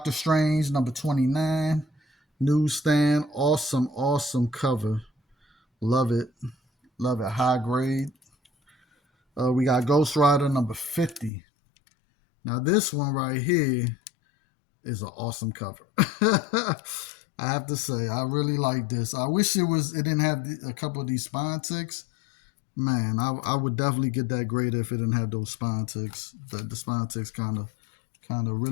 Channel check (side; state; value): right; drops out; at 11.3 s